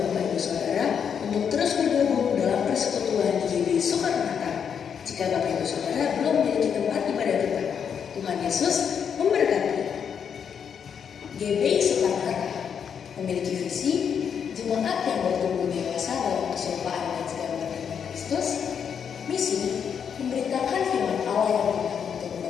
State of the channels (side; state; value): right; quieter; 7.4 dB